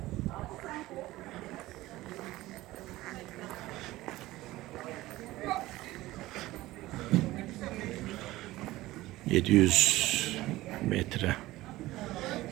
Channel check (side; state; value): left; quieter; 17.5 dB